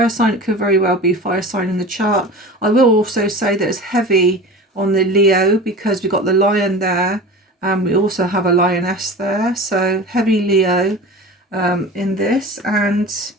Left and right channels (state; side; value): normal; both; correlation 0.35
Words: sign, it could very well be fire sign in the chart. I will also say that it's heavy on the Leo because we've got the lion there, and we also have a lioness there. So heavy Leo in this. And